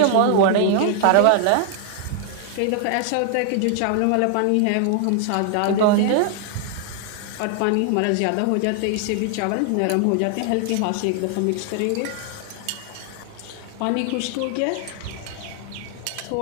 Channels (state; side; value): different; both; correlation 0.00